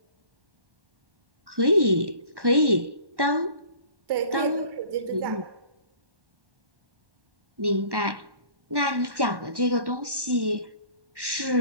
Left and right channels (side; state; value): left; late; 1.1 ms